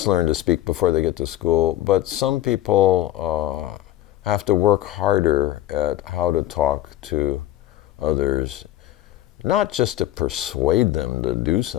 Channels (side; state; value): right; quieter; 13.8 dB